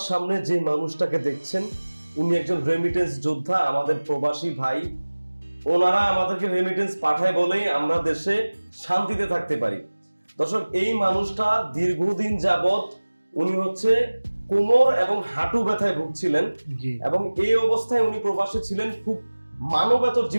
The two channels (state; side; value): inverted; both; correlation -1.00